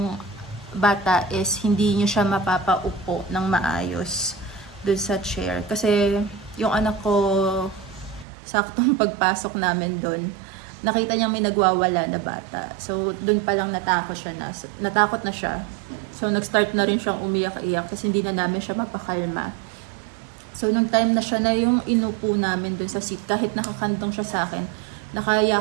bata is hindi nyo siya mapapaupo ng maayos doon sa chair. Kasi yung anak ko, saktong pagpasok namin doon, nakita niya may nagwawala na bata. So, doon pa lang natakot na siya. So, nag-start na rin siyang umiyak-iyak kasi hindi na namin siya mapakalma. So, nung time na siya na yung inupo namin dun sa seat, kahit nakakantong siya sa akin,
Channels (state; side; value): drops out; left; at 8.2 s